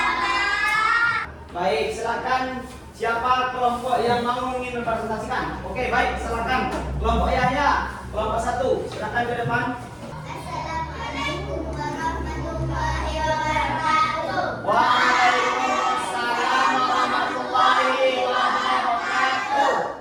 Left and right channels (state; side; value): identical; both; correlation 1.00